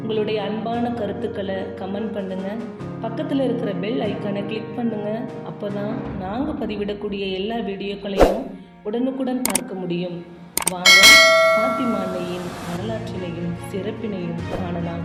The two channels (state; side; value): identical; both; correlation 1.00